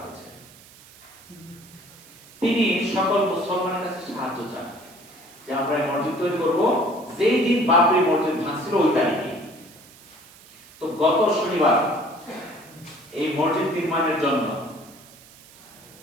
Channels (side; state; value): right; noise; hiss, 23 dB below the sound